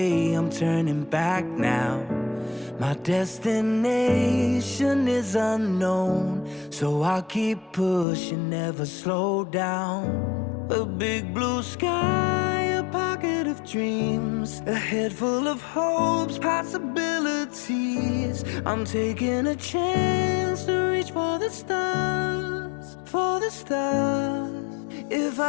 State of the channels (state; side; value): drops out; right; at 8.1 s